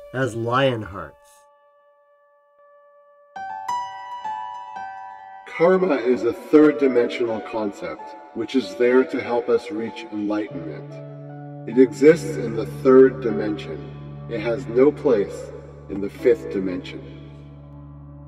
as Lionhearts. Karma is a third-dimensional concept, which is there to help us reach enlightenment. It exists in the third dimension. It has no place in the fifth dimension.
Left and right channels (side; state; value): both; identical; correlation 1.00